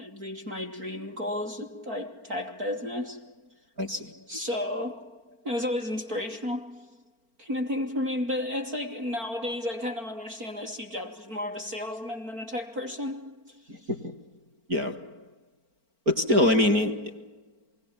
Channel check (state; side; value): late; left; 4.4 ms